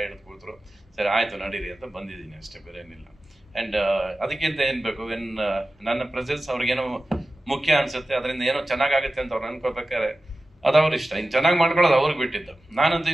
ಹಿಡಿದು ಕೂತ್ರು. ಸರಿ ಆಯ್ತು ನಡೀರಿ ಅಂತ ಬಂದಿದ್ದೀನಿ ಅಷ್ಟೇ, ಬೇರೆ ಏನಿಲ್ಲ. ಆ್ಯಂಡ್ ಅದಕ್ಕಿಂತ ಏನು ಬೇಕು, ನನ್ನ ಪ್ರೆಸೆನ್ಸ್ ಅವ್ರಿಗೇನೋ ಮುಖ್ಯ ಅನ್ಸುತ್ತೆ, ಅದರಿಂದ ಏನೋ ಚೆನ್ನಾಗಾಗುತ್ತೆ ಅಂತ ಅವ್ರು ಅನ್ಕೋಬೇಕಾದ್ರೆ ಅದು ಅವ್ರ ಇಷ್ಟ. ಇನ್ನು ಚೆನ್ನಾಗಿ ಮಾಡ್ಕೊಳ್ಳೋದು ಅವ್ರಿಗೆ ಬಿಟ್ಟಿದ್ದು. ನಾನಂತೂ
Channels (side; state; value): both; normal; correlation 0.94